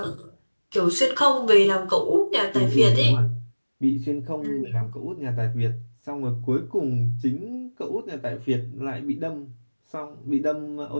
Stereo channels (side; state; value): both; inverted; correlation -1.00